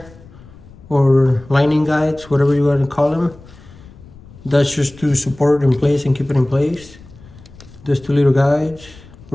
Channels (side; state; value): left; noise; rumble, 22 dB below the sound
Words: or lining guides, whatever you want to call them. That's just to support it in place and keep it in place. There's 2 little guides